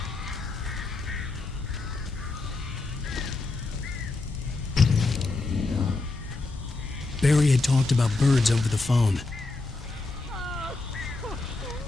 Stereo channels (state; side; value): quieter; right; 3.4 dB